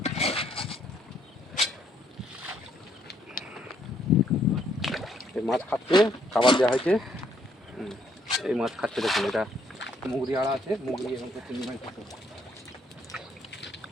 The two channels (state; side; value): normal; both; correlation 0.69